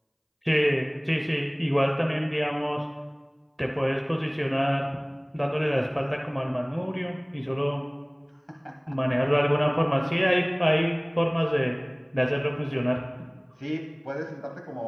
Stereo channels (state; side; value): identical; both; correlation 1.00